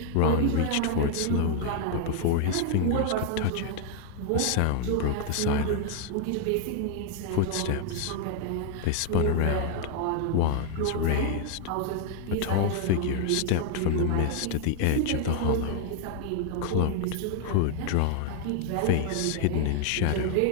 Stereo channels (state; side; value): different; both; correlation 0.00